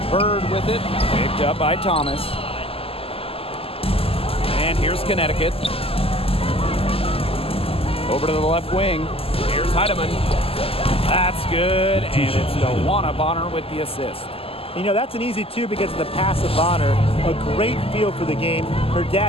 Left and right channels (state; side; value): late; right; 0.28 ms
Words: Bird with it. Picked up by Thomas. And here's Connecticut. Over to the left wing. Here's Heidemann. That's good. And it's Dewana Bonner with the assist. You know, that's an easy two because of the pass of Bonner. A great feel for the game. Her